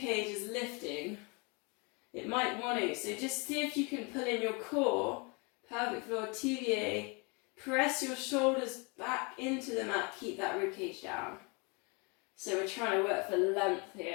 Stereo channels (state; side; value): quieter; right; 31.4 dB